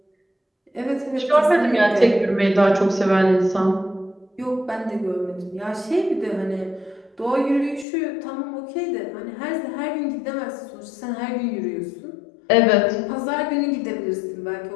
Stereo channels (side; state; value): right; drops out; at 7.9 s